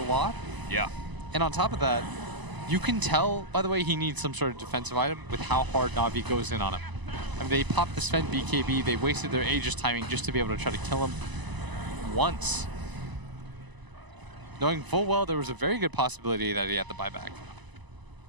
lot. Yeah. And on top of that, you can tell, by the way, he needs some sort of defensive item with how hard Navi goes in on him. I mean, they popped the Sven BKB, they wasted their Aegis timing just to be able to try to kill him once. Knowing full well there was a very good possibility that he had the buyback.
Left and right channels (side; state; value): left; late; 1.0 ms